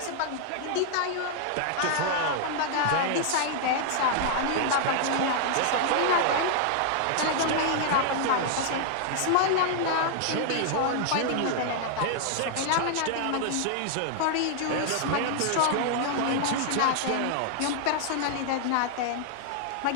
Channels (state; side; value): different; both; correlation -0.01